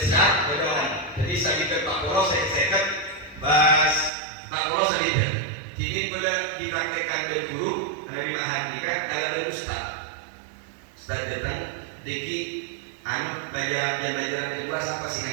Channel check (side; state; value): left; drops out; at 4.1 s